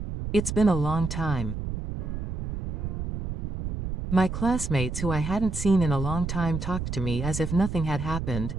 It's been a long time." My classmates who I hadn't seen in a long time talked to me as if nothing had happened,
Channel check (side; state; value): right; noise; rumble, 5 dB below the sound